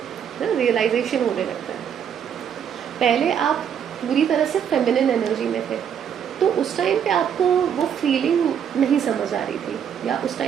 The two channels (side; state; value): left; quieter; 8.4 dB